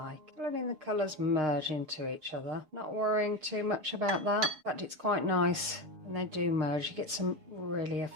Letting the colours merge into each other. Not worrying too much about that. In fact, it's quite nice when they do merge. You get some really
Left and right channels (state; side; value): late; left; 6.5 ms